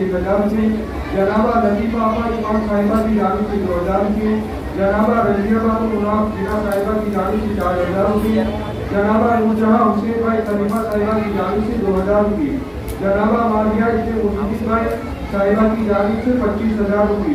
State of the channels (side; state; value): both; identical; correlation 1.00